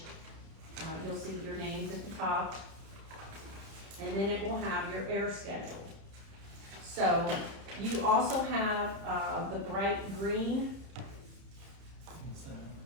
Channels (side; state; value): left; late; 30 ms